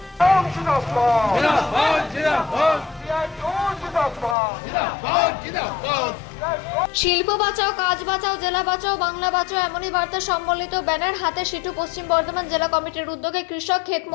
বাঁচাও, কাজ বাঁচাও, জেলা বাঁচাও, বাংলা বাঁচাও এমনই বার্তা সম্বলিত ব্যানার হাতে সিটু পশ্চিম বর্ধমান জেলা কমিটির উদ্যোগে কৃষক, ক্ষেত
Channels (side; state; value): right; drops out; at 4.4 s